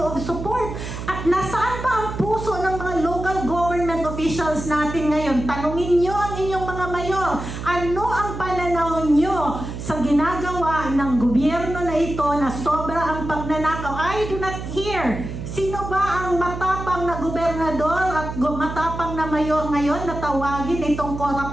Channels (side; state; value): right; noise; hum, 8 dB below the sound